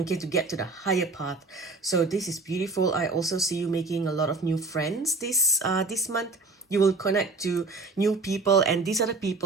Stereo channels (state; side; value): quieter; left; 3.5 dB